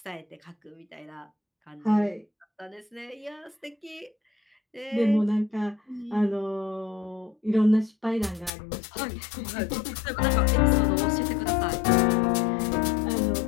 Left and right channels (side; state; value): right; drops out; at 8.5 s